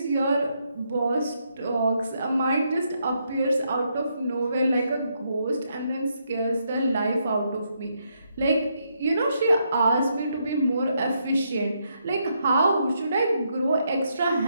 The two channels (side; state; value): both; inverted; correlation -0.78